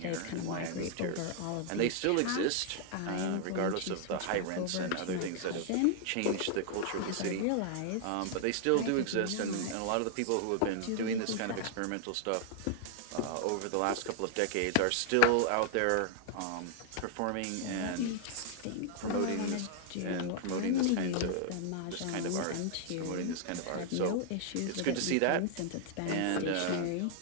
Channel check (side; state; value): both; different; correlation 0.00